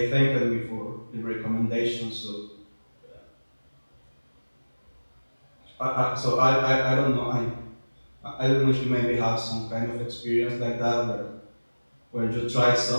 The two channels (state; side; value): inverted; both; correlation -1.00